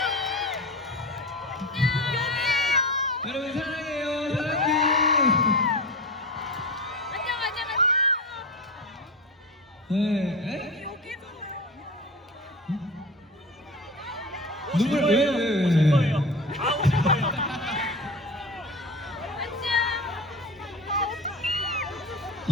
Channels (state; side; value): normal; both; correlation 0.30